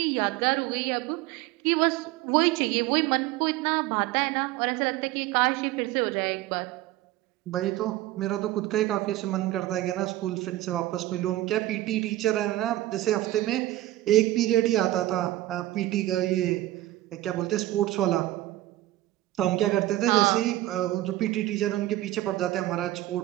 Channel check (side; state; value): left; quieter; 15.9 dB